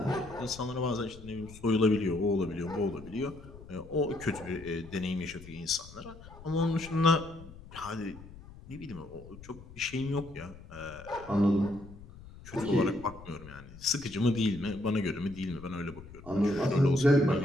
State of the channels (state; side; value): noise; left; rumble, 17 dB below the sound